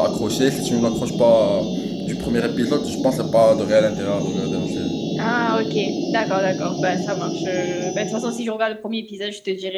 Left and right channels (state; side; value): identical; both; correlation 1.00